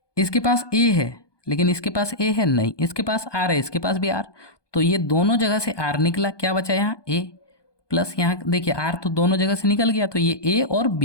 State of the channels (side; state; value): right; late; 1.2 ms